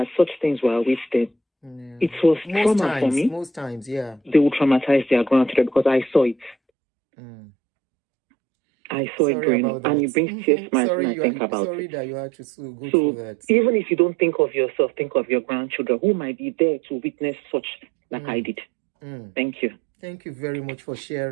such things were with them. It was trauma for me. Most times, yeah. They will traumatize their grandchildren because I saw it. I saw it growing up, and it brings tears to my eyes when I think about it. Sorry that you had to go so through that. Even if you don't think of yourself, think of your grandchildren who might be there to witness such like I did. Thank you. Thank you very much for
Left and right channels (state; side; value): drops out; left; at 6.6 s